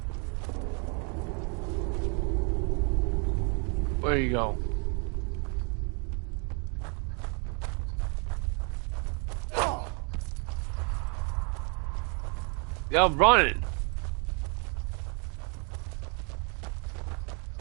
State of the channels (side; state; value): left; quieter; 36.7 dB